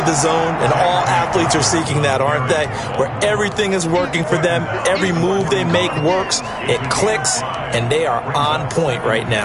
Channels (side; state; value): both; identical; correlation 1.00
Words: the zone, and all athletes are seeking that, aren't they? Where everything is working for them, every move they make works, it clicks, and they are on point right